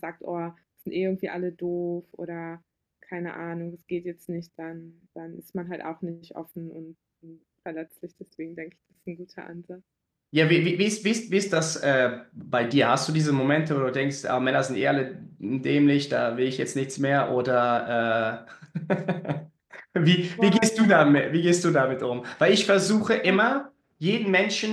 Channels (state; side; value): identical; both; correlation 1.00